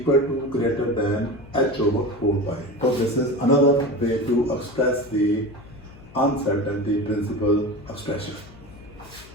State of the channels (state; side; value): noise; left; hum, 21 dB below the sound